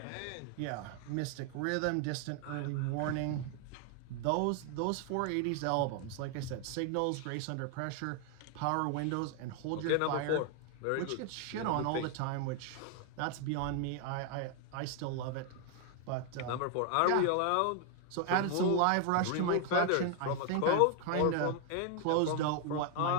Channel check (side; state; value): both; different; correlation 0.00